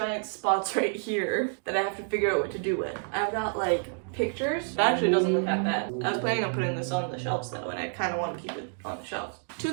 spots right here that I have to figure out what to do with. I've got, like, pictures. It actually doesn't look that bad. I was planning on putting this on the shelves, though, and I kind of want to keep it on the shelves.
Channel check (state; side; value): silent; left; 56 dB below the other